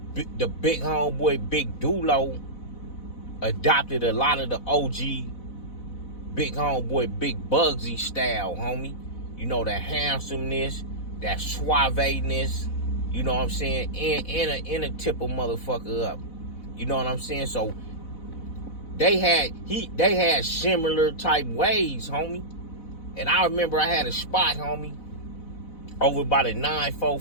the big homeboy Big Dulo adopted a lot of the OG big homeboy Big Bugsy style, homie. You know, that handsomeness, that suaveness, you know what I'm saying, and a tip a motherfucker up. You know what I'm saying? So they had similar type ways, homie. And I remember I had a spot, homie, over by the 9-4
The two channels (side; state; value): right; late; 4.0 ms